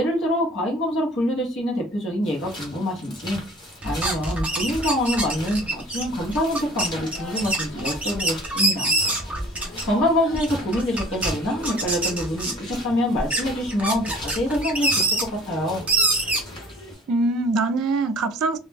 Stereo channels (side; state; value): both; normal; correlation 0.48